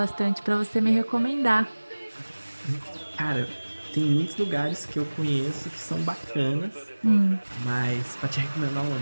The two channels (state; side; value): inverted; both; correlation -1.00